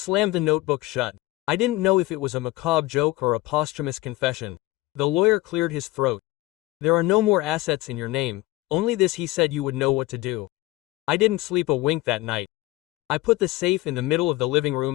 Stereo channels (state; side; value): quieter; right; 19.0 dB